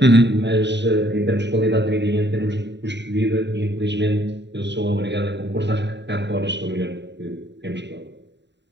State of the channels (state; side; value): late; left; 0.51 ms